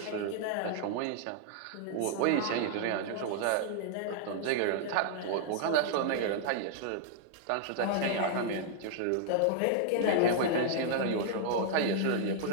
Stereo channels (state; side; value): different; both; correlation -0.01